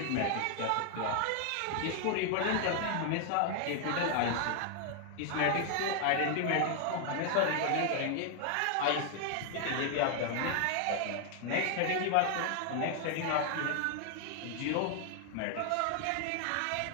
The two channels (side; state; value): both; different; correlation 0.00